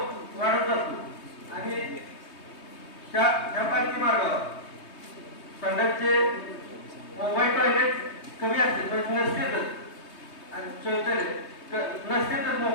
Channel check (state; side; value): late; right; 3.2 ms